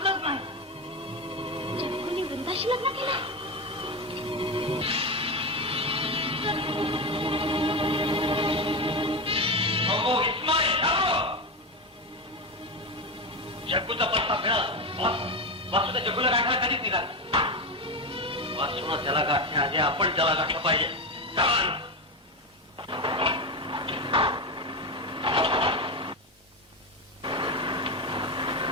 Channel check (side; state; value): both; normal; correlation 0.15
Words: नाही. जग्गूने वृंदाशी लग्न केलं. जग्गूचा पत्ता मिळाला. वासूचा जग्गूला गाठायला कधीच निघाला. वासून त्याला गाठण्याआधी आपण त्याला गाठलं पाहिजे. चला.